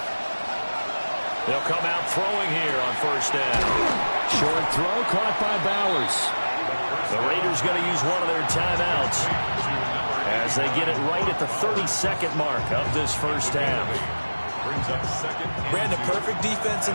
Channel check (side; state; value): both; inverted; correlation -1.00